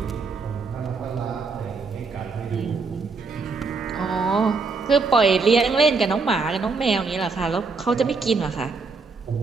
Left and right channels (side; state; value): left; quieter; 4.4 dB